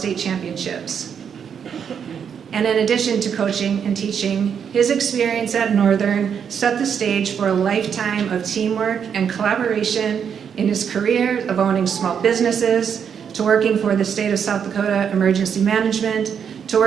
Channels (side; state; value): left; quieter; 7.5 dB